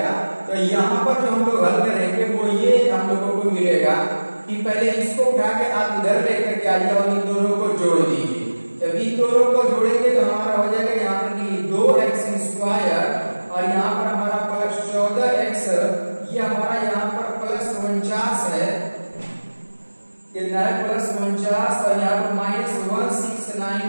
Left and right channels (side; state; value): both; inverted; correlation -1.00